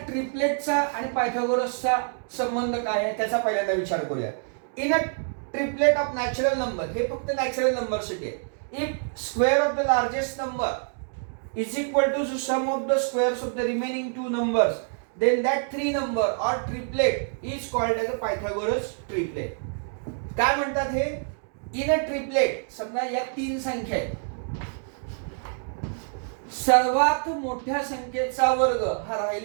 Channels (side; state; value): left; silent; 61 dB below the other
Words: ट्रिपलेटचा आणि पायथागोरसचा संबंध काय आहे त्याचा पहिल्यांदा विचार करूया. In a triplet of natural number, हे फक्त नॅचरल नंबर साठी आहे. If square of the largest number is equal to sum of the squares of the remaining 2 numbers, then that 3 number or triplet is called as a Pythagoras triplet. काय म्हणतात हे? In a triplet, समजा या 3 संख्या आहेत, सर्वात मोठ्या संख्येचा वर्ग हा